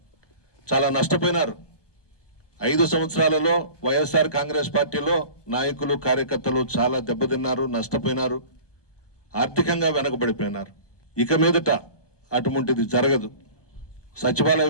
చాలా నష్టపోయినారు 5 సంవత్సరాలలో వైఎస్ఆర్ కాంగ్రెస్ పార్టీలో నాయకులు కార్యకర్తలు చాలా దెబ్బతిన్నారు, నష్టపోయినారు, ఆర్థికంగా వెనకబడిపోయినారు. ఇక మీదట అటువంటిది జరగదు. సచివాలయ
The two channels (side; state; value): right; late; 1.2 ms